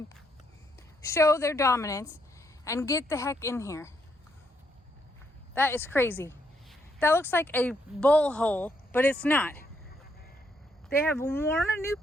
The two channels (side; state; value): both; normal; correlation 0.75